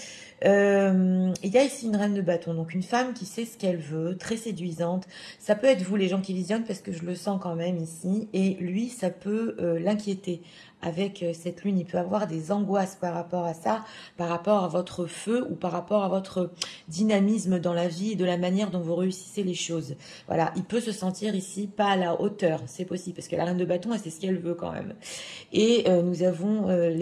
Il y a ici une reine de bâton, donc une femme qui sait ce qu'elle veut, très séduisante. Ça peut être vous, les gens qui visionnent, parce que je le sens quand même ici. Et lui, ça peut l'inquiéter. Avec cette lune, il peut avoir des angoisses par rapport à ça, par rapport à votre feu ou par rapport à votre dynamisme dans la vie et de la manière dont vous réussissez les choses. Voilà, il peut se sentir ici pas à la hauteur, c'est possible, parce que la reine de bâton, elle sait ce qu'elle veut quand même. Et nous avons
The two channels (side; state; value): both; identical; correlation 1.00